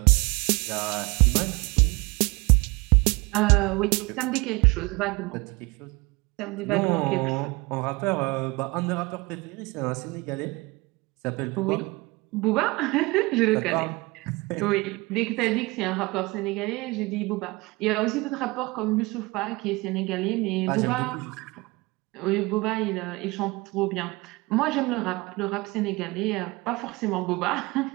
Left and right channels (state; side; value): quieter; left; 24.1 dB